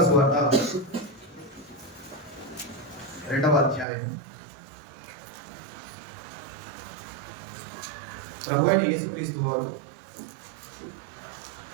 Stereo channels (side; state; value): left; drops out; at 3.9 s